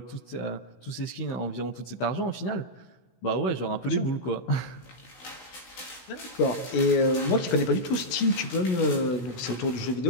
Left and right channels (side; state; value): right; late; 16 ms